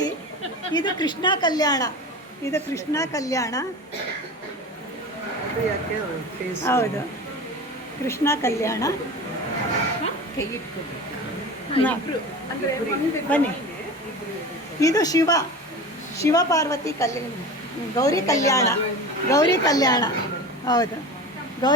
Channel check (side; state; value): both; normal; correlation 0.32